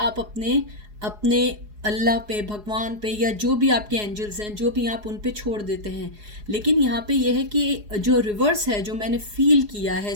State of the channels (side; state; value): left; late; 4.8 ms